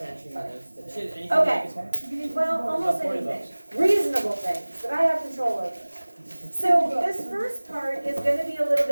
Okay. make us happy? Well, almost About 40 anything, reasonable things that I have control over. So this first part is gonna be a little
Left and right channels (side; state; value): both; inverted; correlation -1.00